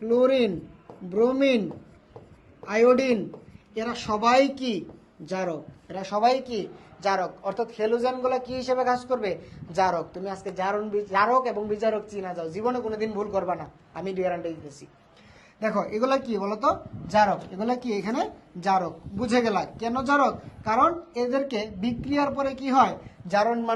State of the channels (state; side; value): identical; both; correlation 1.00